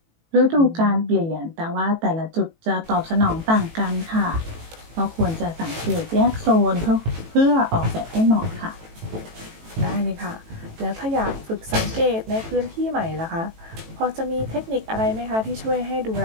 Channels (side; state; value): left; late; 18 ms